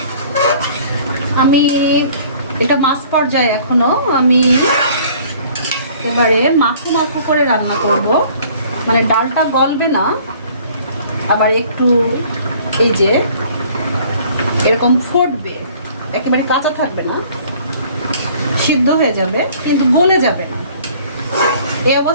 আমি এটা মাছ পর্যায়ে এখনো আমি এবারে মাখু মাখু করে রান্না করব, মানে ডালটা গলবে না, আবার একটু এই যে এরকম ফুটবে, একেবারে কাঁচা থাকবে না, সিদ্ধ হয়ে যাবে কিন্তু গলে যাবে না। এই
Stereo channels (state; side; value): inverted; both; correlation -0.53